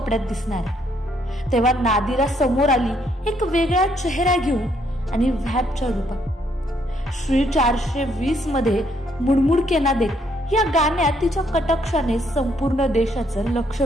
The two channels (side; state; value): both; normal; correlation 0.71